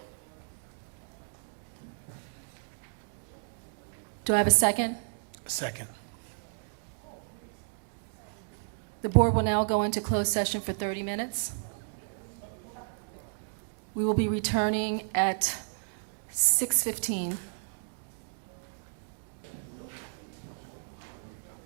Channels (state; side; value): silent; left; digital silence